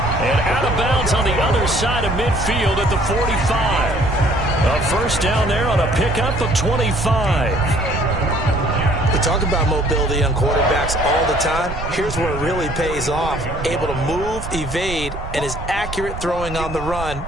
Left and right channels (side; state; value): right; noise; rumble, 9 dB below the sound